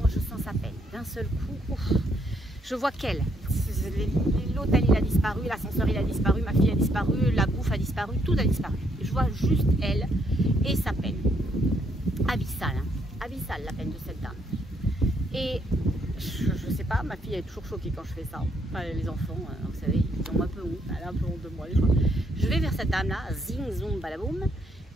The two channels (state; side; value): normal; both; correlation 0.72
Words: je sens sa peine. D'un seul coup, ouf, je vois qu'elle. L'hôtel il a disparu, l'ascenseur il a disparu, ma fille a disparu, la bouffe a disparu, tout a disparu. Et je vois juste elle et sa peine. Abyssale, hein. Abyssale la peine de cette dame. Et je sais pas, ma fille est toujours choquée quand je fais ça. Enfin, les enfants, vous savez, ils ont un peu honte, elle a un peu honte de moi des fois. Je vais vers cette dame-là, zing, zoom, balaboum,